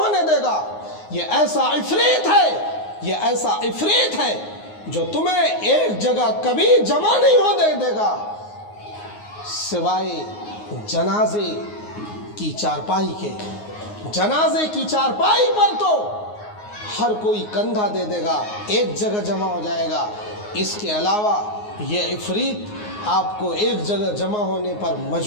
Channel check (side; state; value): right; late; 9.5 ms